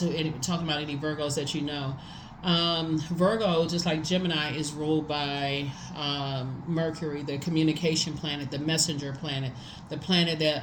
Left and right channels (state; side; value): identical; both; correlation 1.00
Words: any Virgos that you know. Virgo, just like Gemini, is ruled by Mercury, the communication planet, the messenger planet, the planet that